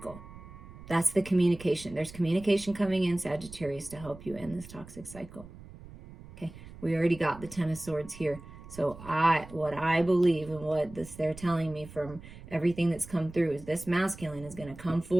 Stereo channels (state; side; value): noise; right; rumble, 17 dB below the sound